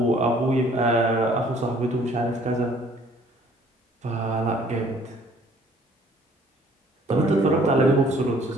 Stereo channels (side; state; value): both; normal; correlation 0.57